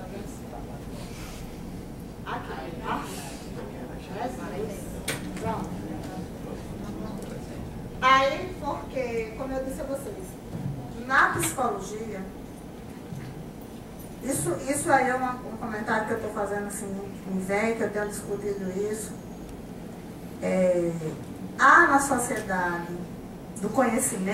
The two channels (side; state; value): both; identical; correlation 1.00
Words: vendo? Aqui, tá? Pronto. Aí, porque, como eu disse a vocês, na psicologia, isso aí é um comentário que eu estou fazendo assim, me vem, que eu tenho discutido isso. Há na sociedade do